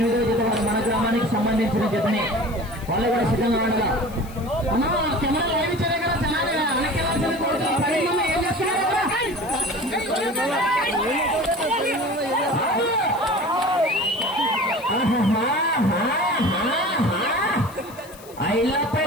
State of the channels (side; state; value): left; noise; hiss, 21 dB below the sound